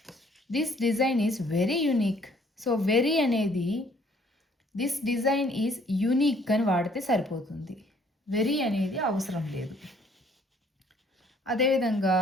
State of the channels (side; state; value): both; normal; correlation 0.61